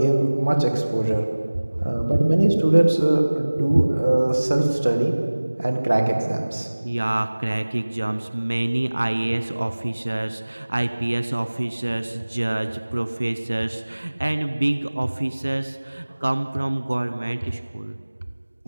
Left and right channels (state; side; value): inverted; both; correlation -1.00